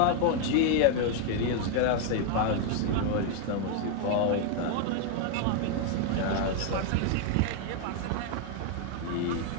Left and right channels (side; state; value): both; different; correlation 0.00